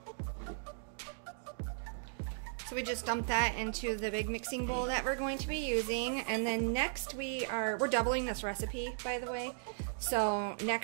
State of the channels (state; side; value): silent; left; digital silence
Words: So we just dump that into the big mixing bowl that we're going to be using, and then next we're doubling this recipe, by the way. So